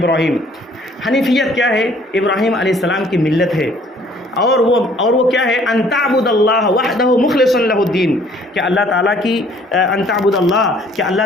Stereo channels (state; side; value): normal; both; correlation 0.58